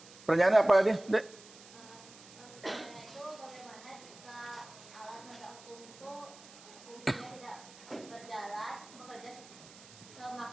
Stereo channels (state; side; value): noise; right; hiss, 19 dB below the sound